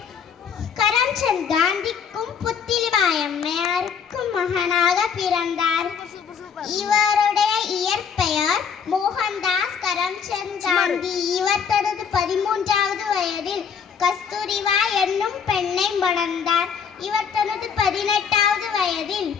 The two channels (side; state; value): right; quieter; 6.8 dB